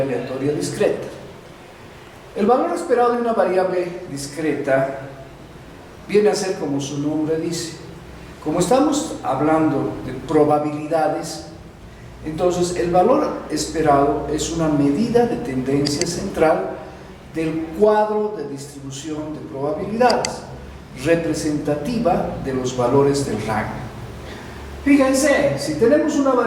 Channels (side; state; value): both; identical; correlation 1.00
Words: aleatoria discreta. El valor esperado de una variable discreta viene a ser como su nombre dice. Como estamos hablando de probabilidades, entonces el valor esperado es una medida de tendencia central del cuadro de distribución de probabilidades, representativa de los valores del rango. Fíjense, si tenemos una